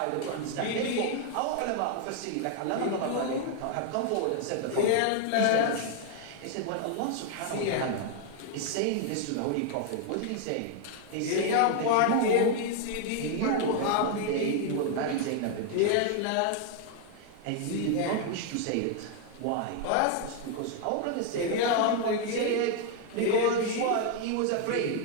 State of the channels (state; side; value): different; both; correlation 0.00